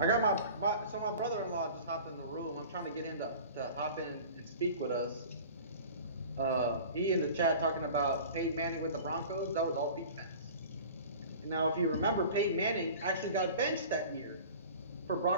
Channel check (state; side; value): inverted; both; correlation -0.41